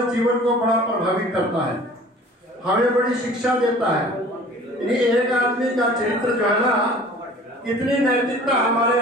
जीवन को बड़ा प्रभावित करता है, हमें बड़ी शिक्षा देता है। एक आदमी का चरित्र जो है ना, इतनी नैतिकता हमारे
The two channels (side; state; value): both; normal; correlation 0.46